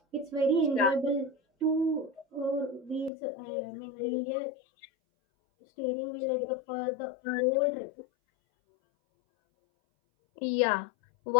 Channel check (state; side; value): drops out; right; at 3.1 s